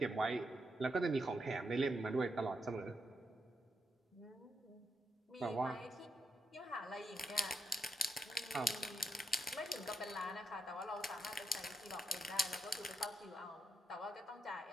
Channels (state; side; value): normal; both; correlation 0.82